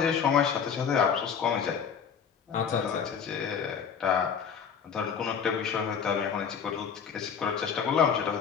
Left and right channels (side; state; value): right; quieter; 7.0 dB